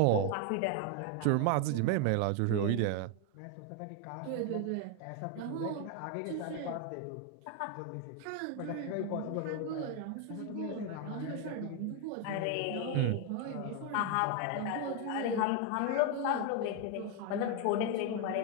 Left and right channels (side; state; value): both; different; correlation 0.01